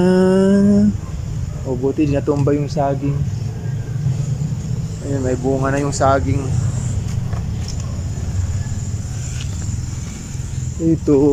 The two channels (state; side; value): identical; both; correlation 1.00